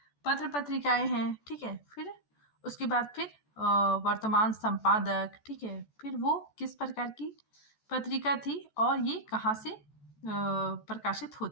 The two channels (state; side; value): late; right; 14 ms